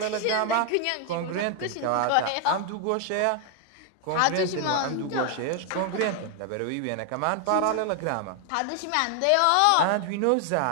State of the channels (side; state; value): both; different; correlation 0.00